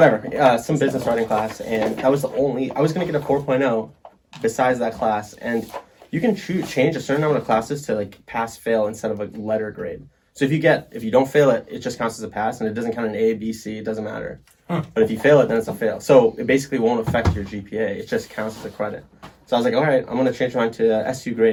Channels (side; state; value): both; identical; correlation 1.00